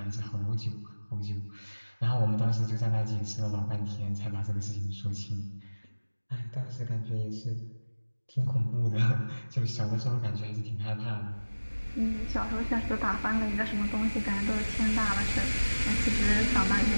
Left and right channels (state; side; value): inverted; both; correlation -1.00